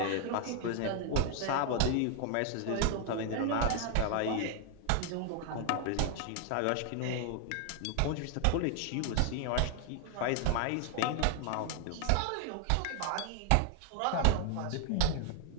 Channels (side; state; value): both; different; correlation 0.00